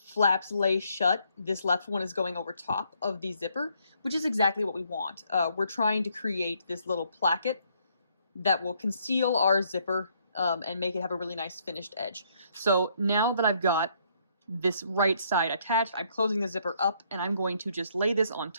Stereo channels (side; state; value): both; inverted; correlation -0.70